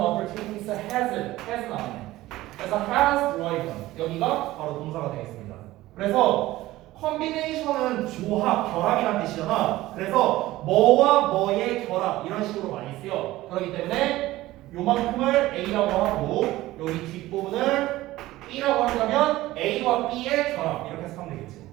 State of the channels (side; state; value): left; quieter; 16.9 dB